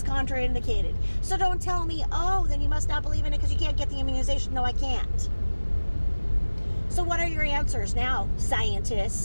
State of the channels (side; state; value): both; inverted; correlation -1.00